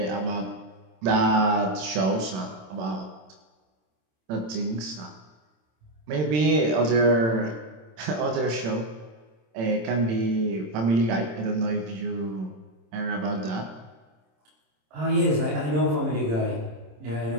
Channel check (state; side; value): late; left; 27 ms